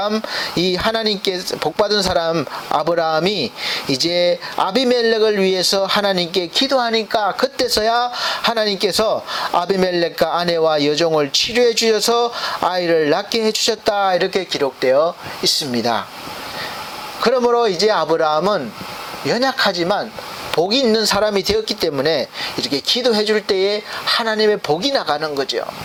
이 하나님께 복받은 사람 아브라함이 이제 아비멜렉을 위해서 하나님께 기도하니까 그때서야 하나님께서 아비멜렉과 아내와 여종을 치료해 주셔서 아이를 낳게 해 주셨다, 이렇게 기록되어 있습니다. 그러므로 이제 아브라함은 연약하지만 복이 있는 사람이 되었기 때문에 이렇게 기도해 줄 때에 하나님의 복이 나가는 거죠.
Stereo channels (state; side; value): identical; both; correlation 1.00